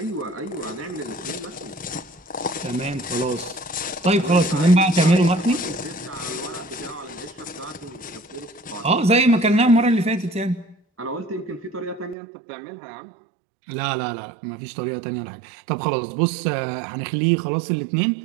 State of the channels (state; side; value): drops out; left; at 12.2 s